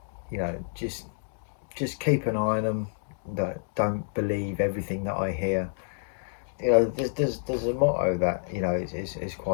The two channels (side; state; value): right; silent; digital silence